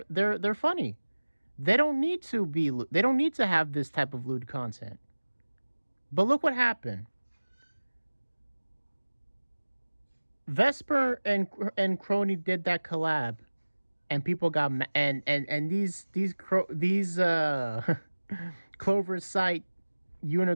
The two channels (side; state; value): both; inverted; correlation -1.00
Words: funny. They don't need to have this type of lewd content. But look what happened. Vesper and Crony did that collab, and people got and these Clover Sight